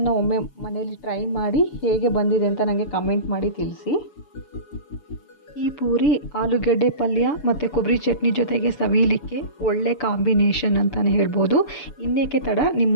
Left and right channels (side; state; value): right; late; 6.9 ms